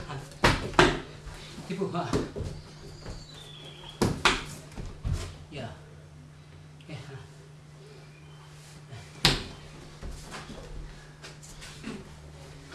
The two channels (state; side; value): identical; both; correlation 1.00